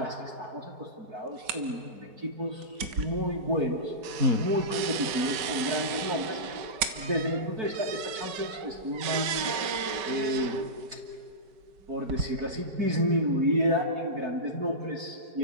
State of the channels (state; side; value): late; left; 5.2 ms